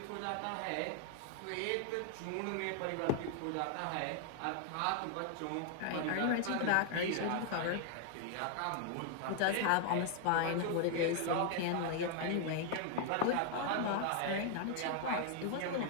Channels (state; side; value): different; both; correlation 0.00